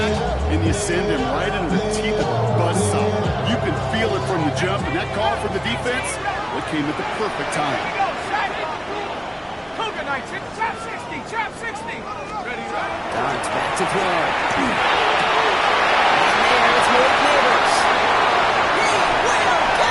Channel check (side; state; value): both; identical; correlation 1.00